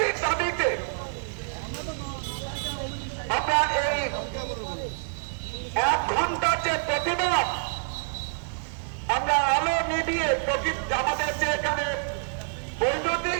দাবিতে আমরা এই 1 ঘন্টার যে প্রতিবাদ, আমরা আলো নিভিয়ে আমাদের যে এখানে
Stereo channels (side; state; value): left; silent; digital silence